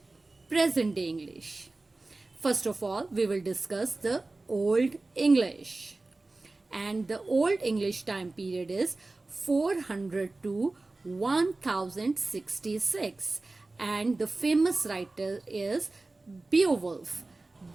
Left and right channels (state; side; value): quieter; left; 3.2 dB